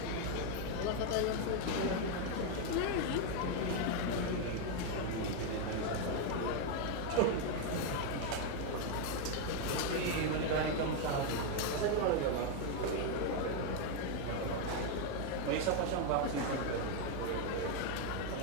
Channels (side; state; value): both; different; correlation 0.01